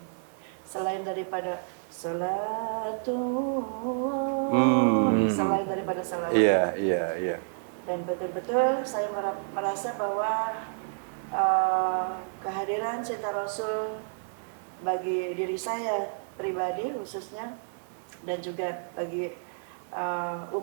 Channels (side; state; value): left; silent; digital silence